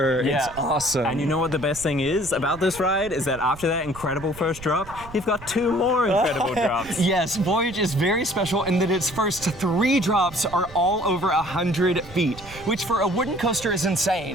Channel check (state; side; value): noise; right; rumble, 17 dB below the sound